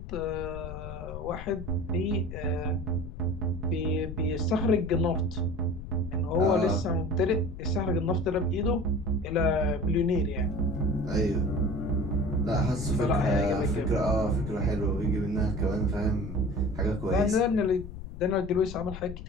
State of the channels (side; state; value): left; noise; rumble, 10 dB below the sound